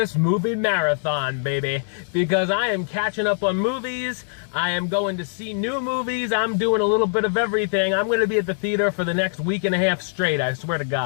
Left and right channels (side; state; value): right; silent; 64 dB below the other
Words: movie marathon, baby. Because I am catching up on movies, I am going to see new movies, I'm doing a little bit of everything. I'm gonna be at the theater for the next week and a half straight, I swear to